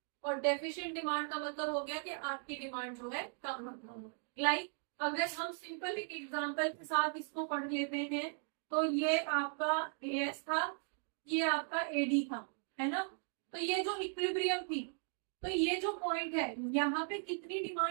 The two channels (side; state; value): left; silent; 53 dB below the other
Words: और डेफिशिएंट डिमांड का मतलब हो गया कि आपकी डिमांड जो है कम है। लाइक अगर हम सिंपल एक एग्जांपल के साथ इसको पढ़ लेते हैं, तो ये आपका एएस था, ये आपका एडी था, है ना। तो ये जो इक्विलिब्रियम थी, तो ये जो पॉइंट है यहाँ पे कितनी